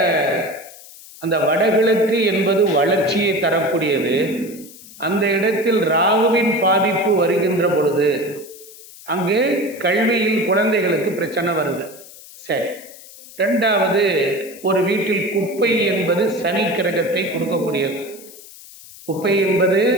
அந்த வடகிழக்கு என்பது வளர்ச்சியை தரக்கூடியது. அந்த இடத்தில் ராகுவின் பாதிப்பு வருகின்ற பொழுது அங்கே கல்வியில் குழந்தைகளுக்கு பிரச்சனை வருது. சரி. ரெண்டாவது, ஒரு வீட்டில் குப்பை என்பது சனி கிரகத்தை கொடுக்கக்கூடியது. குப்பை என்பது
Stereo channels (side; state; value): left; noise; hiss, 19 dB below the sound